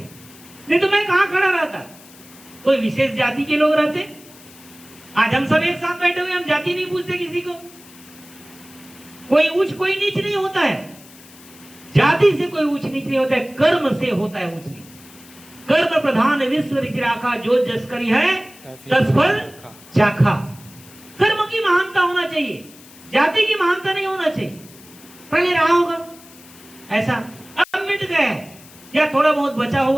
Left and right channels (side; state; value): left; noise; hiss, 22 dB below the sound